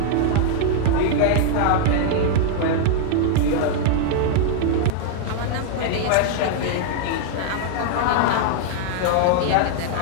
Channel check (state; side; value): different; both; correlation -0.01